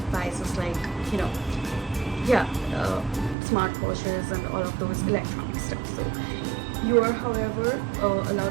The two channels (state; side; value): drops out; left; at 3.4 s